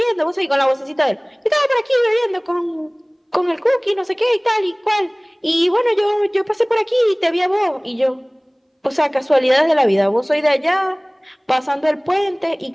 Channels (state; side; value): identical; both; correlation 1.00